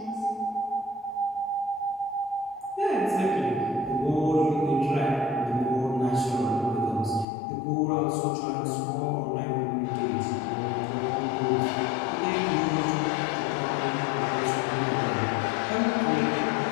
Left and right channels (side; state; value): right; drops out; at 7.2 s